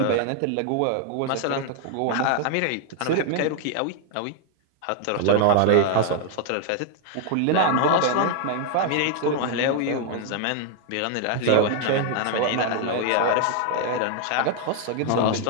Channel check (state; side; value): different; both; correlation 0.00